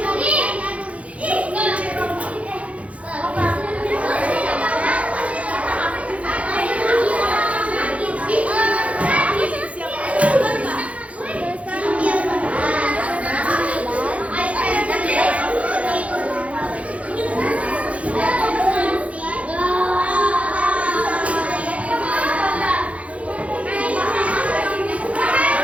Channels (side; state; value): left; late; 0.064 ms